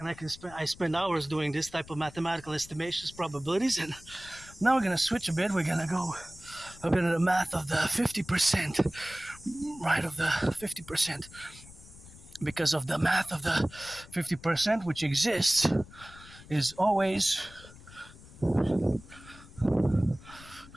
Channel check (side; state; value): left; noise; rumble, 20 dB below the sound